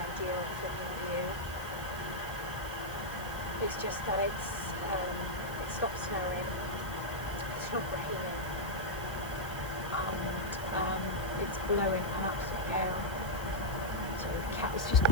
filming view. It's just that it stopped snowing, it's not raining, and it's blowing an absolute gale. So the cat was just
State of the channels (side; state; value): right; noise; hiss, 14 dB below the sound